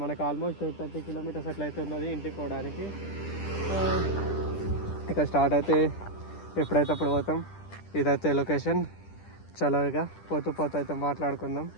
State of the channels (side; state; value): right; late; 10 ms